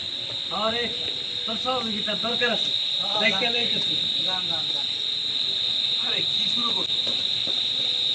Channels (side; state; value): both; identical; correlation 1.00